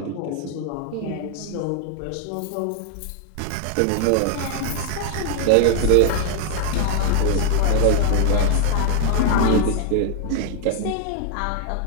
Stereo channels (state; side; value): different; both; correlation 0.00